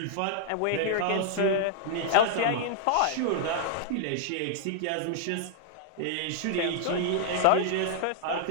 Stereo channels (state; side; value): different; both; correlation -0.01